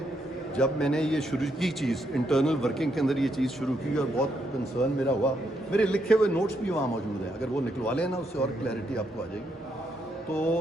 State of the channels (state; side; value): normal; both; correlation 0.77